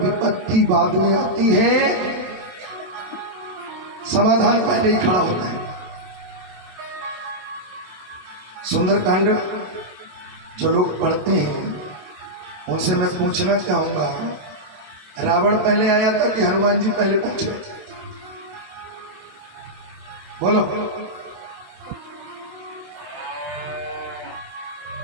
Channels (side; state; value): left; late; 27 ms